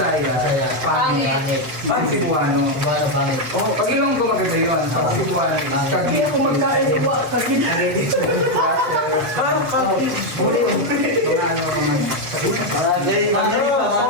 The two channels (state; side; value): late; left; 8.1 ms